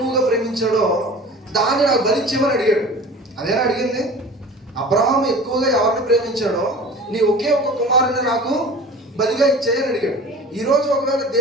ప్రేమించాడో దాన్ని నాకు బలిచ్చిమని అడిగాడు అదేనా అడిగింది అబ్రహాం ఎక్కువగా ఎవరిని ప్రేమించాడో నీ ఒకే ఒక కుమారుని నాకు బలిగా ఇచ్చేయని అడిగాడు ఈరోజు ఒకవేళ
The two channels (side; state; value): both; normal; correlation 0.39